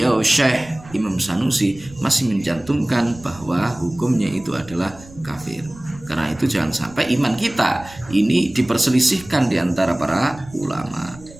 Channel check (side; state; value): right; noise; rumble, 20 dB below the sound